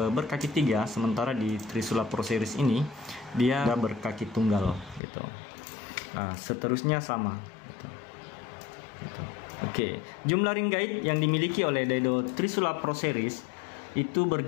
berkaki 3, sementara di Trisula Pro Series ini dia berkaki tunggal gitu. Nah, seterusnya sama gitu. Oke, jumlah ring guide yang dimiliki oleh Daido Trisula Pro Series itu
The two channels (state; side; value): drops out; right; at 5.0 s